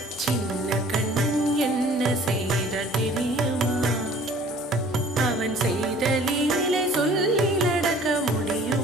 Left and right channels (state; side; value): normal; both; correlation 0.51